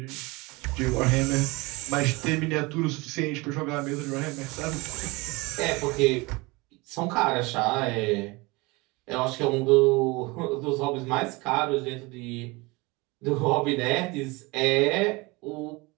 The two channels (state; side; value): quieter; left; 24.7 dB